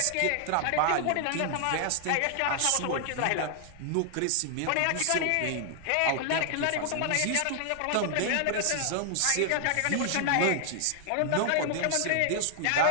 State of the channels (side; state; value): both; different; correlation 0.00